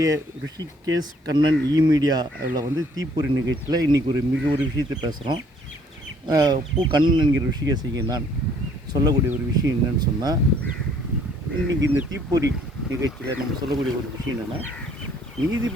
ரிஷிகேஷ் கண்ணன் மீடியா அதில் தீப்பொறி நிகழ்ச்சியில் இன்றைக்கி ஒரு விஷயத்தை பேசுகிறோம். கண்ணன் என்கிற ரிஷிகேஷிக்கு நான் சொல்லக்கூடிய ஒரு விஷயம் என்னன்னு சொன்னால், இன்றைக்கி இந்த தீப்பொறி நிகழ்ச்சியில் நம்ம சொல்லக்கூடிய ஒரு விஷயம் என்னென்னா,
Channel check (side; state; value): both; normal; correlation 0.62